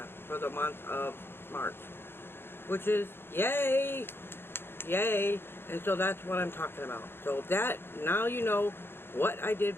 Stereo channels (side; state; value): right; late; 0.11 ms